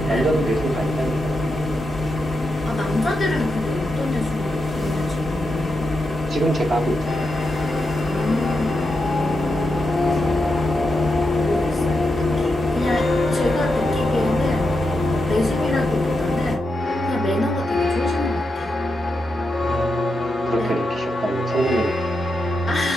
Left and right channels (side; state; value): both; normal; correlation 0.86